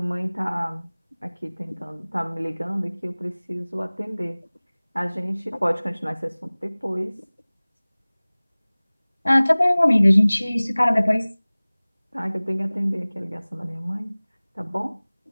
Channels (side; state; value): both; inverted; correlation -1.00